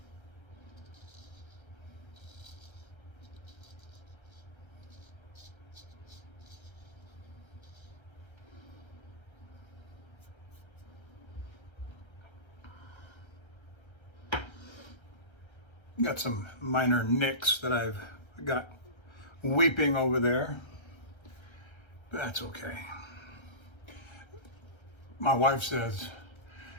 Got some minor nicks that I've got weeping over there. That's okay. My wife says,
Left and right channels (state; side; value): late; right; 1.3 ms